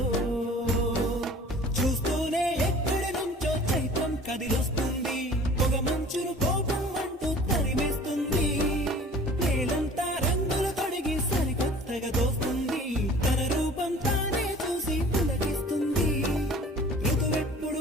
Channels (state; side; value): normal; both; correlation 0.46